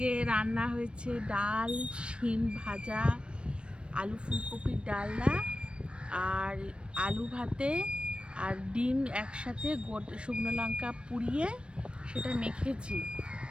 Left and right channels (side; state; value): left; late; 0.057 ms